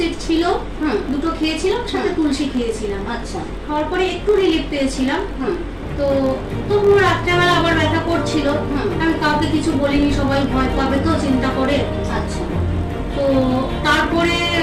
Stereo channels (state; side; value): identical; both; correlation 1.00